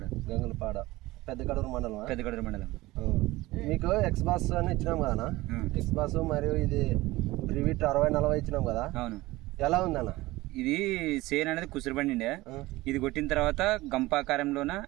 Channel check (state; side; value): quieter; left; 19.1 dB